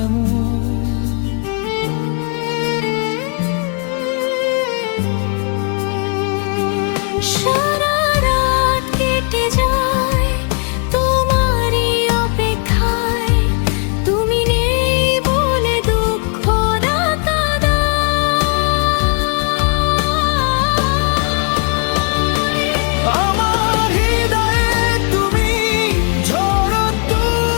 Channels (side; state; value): right; quieter; 38.0 dB